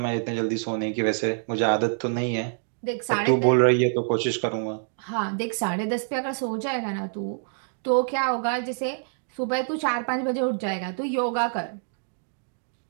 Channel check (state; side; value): silent; left; digital silence